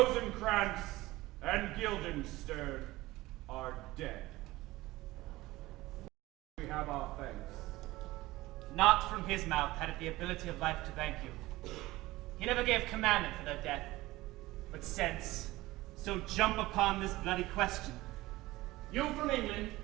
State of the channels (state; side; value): quieter; left; 18.7 dB